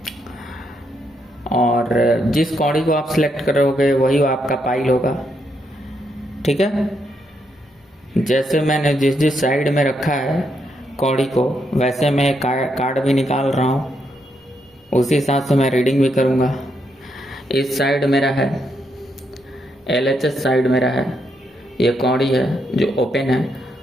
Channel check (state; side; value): normal; both; correlation 0.79